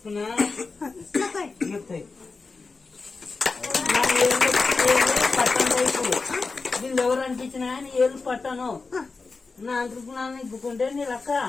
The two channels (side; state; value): right; quieter; 4.2 dB